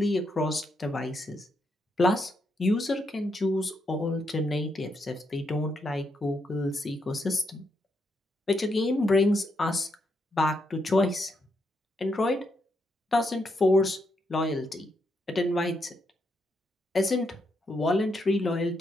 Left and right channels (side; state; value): both; normal; correlation 0.80